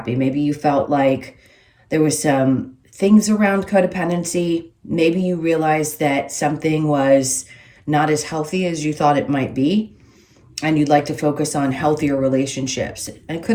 Maybe you felt like there was some things around codependency. Maybe you realized that something was not as healthy as you thought it might be, and you'd like to focus on healthier relationships. And it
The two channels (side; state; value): both; identical; correlation 1.00